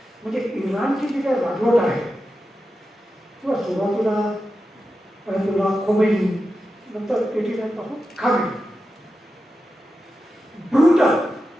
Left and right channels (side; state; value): both; normal; correlation 0.91